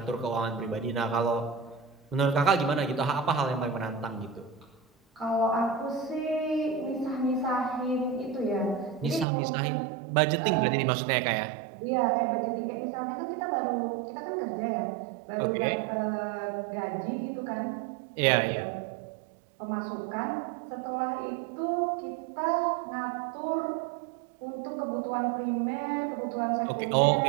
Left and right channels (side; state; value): left; drops out; at 9.2 s